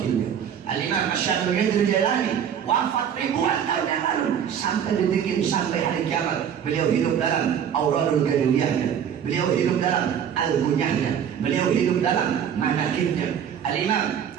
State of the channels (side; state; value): left; quieter; 8.5 dB